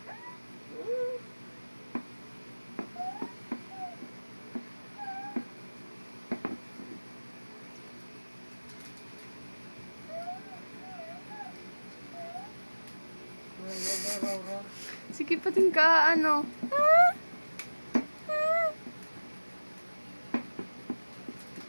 Sige, pating ka, ano.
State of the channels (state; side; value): inverted; both; correlation -1.00